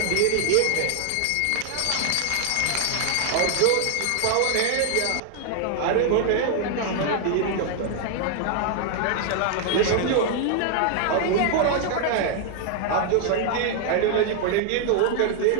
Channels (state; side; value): different; both; correlation 0.00